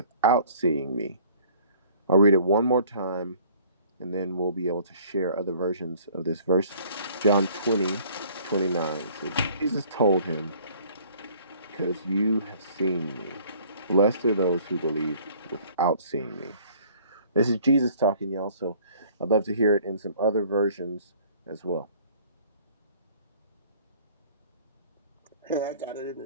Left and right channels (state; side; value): inverted; both; correlation -0.54